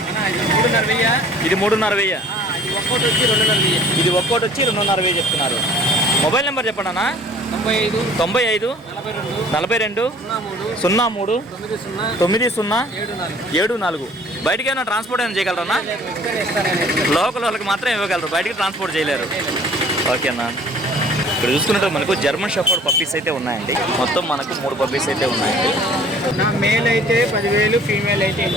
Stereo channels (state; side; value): normal; both; correlation 0.52